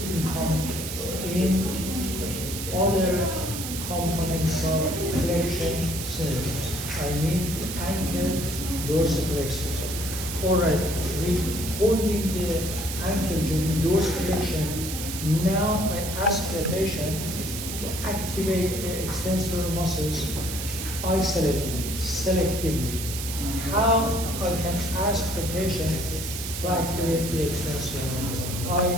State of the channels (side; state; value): right; noise; hiss, 6 dB below the sound